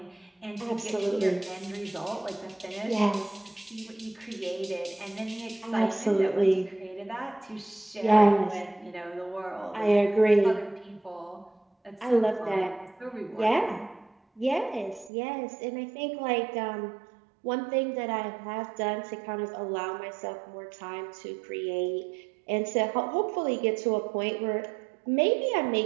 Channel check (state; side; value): drops out; left; at 15.1 s